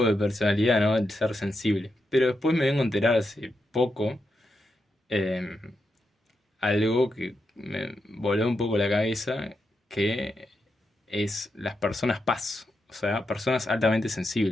de personalidad, ¿no? El ser sensible. Pero después me vengo a enterar hace poco eh, algo que me voló un poco la cabeza, que es las personas paz, o sea, personas altamente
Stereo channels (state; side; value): normal; both; correlation 0.85